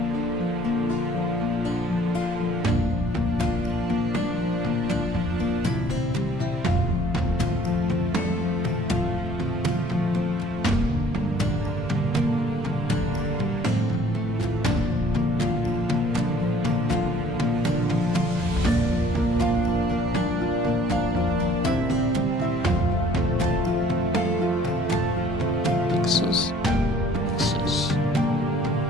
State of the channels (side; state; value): both; normal; correlation 0.55